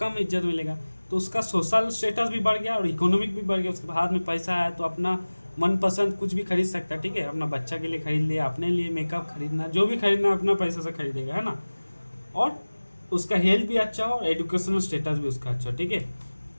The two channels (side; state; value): both; inverted; correlation -1.00